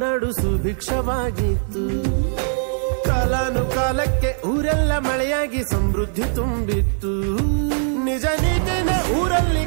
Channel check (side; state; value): left; silent; 55 dB below the other